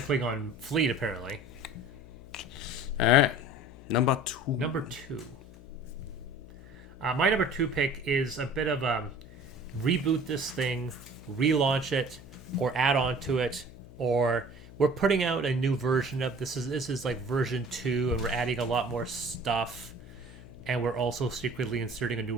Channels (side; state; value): left; noise; hum, 18 dB below the sound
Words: fleet, apparently. All right. Number 2. My number 2 pick is a bit of a reboot this thing, relaunch it, or add on to it, or we're putting out a new version of this. This is like version 2, and we're adding a lot more stuff. And we're also secretly inserting a new